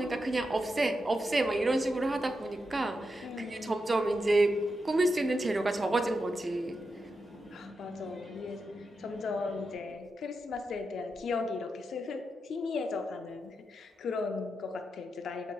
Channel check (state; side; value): normal; both; correlation 0.87